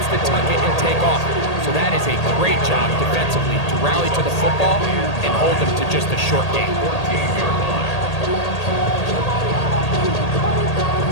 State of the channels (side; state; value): right; late; 1.8 ms